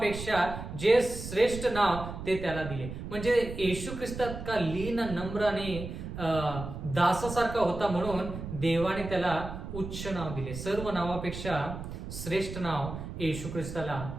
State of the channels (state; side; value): noise; right; rumble, 8 dB below the sound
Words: जे श्रेष्ठ नाव ते त्याला दिले. म्हणजे येशू ख्रिस्तात का लीन, नम्र आणि दासासारखा होता म्हणून देवाने त्याला उच्च नाव दिले. सर्व नावापेक्षा श्रेष्ठ नाव येशू ख्रिस्ताला